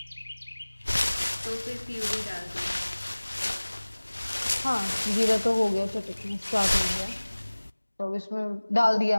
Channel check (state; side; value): inverted; both; correlation -1.00